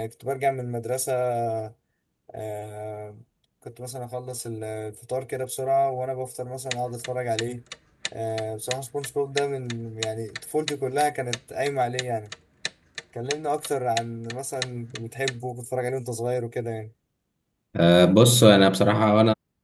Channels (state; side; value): identical; both; correlation 1.00